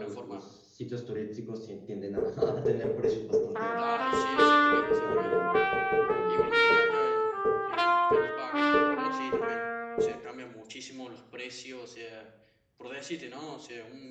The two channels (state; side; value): identical; both; correlation 1.00